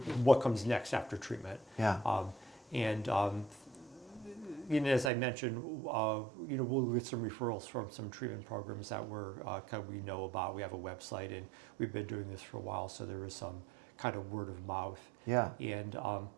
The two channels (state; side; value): drops out; left; at 5.1 s